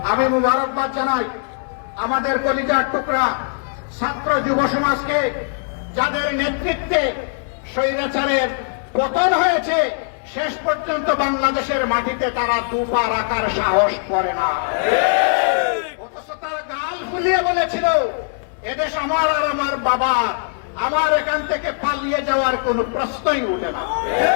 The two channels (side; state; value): right; silent; 66 dB below the other